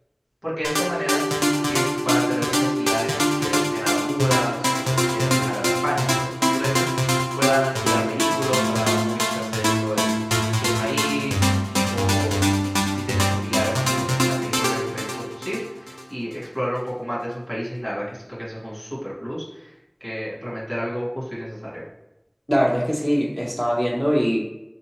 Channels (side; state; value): both; identical; correlation 1.00